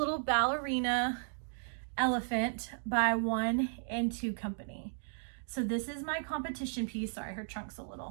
ballerina elephant by 1 and 2 Company. So this is my competition piece. Sorry, her trunk's a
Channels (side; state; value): left; silent; digital silence